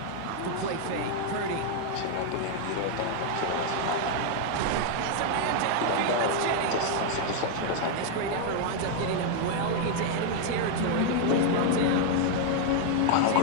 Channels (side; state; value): both; different; correlation 0.00